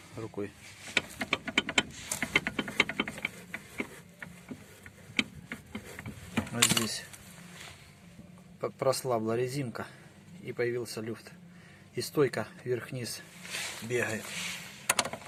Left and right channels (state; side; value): identical; both; correlation 1.00